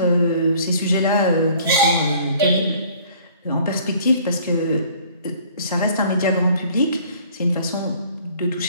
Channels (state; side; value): inverted; both; correlation -0.54